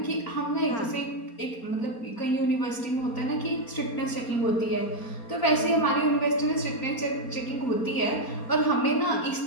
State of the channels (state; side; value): late; right; 4.3 ms